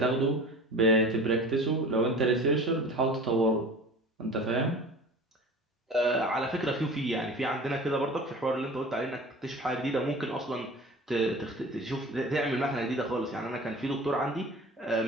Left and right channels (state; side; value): normal; both; correlation 0.39